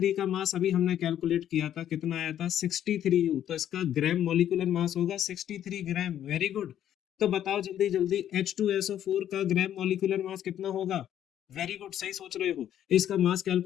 का मास अभी हमने कैलकुलेट किया था, कितना आया था? 63U, तो इसका ग्राम मॉलिक्यूलर मास होगा 63 ग्राम। Very good. तो बताओ जल्दी जल्दी H2SO4 का ग्राम मॉलिक्यूलर मास कितना होगा? वेरी गुड, सही सोच रहे हो। इसका मास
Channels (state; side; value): quieter; right; 10.8 dB